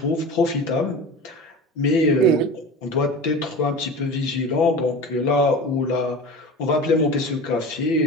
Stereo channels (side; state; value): both; normal; correlation 0.33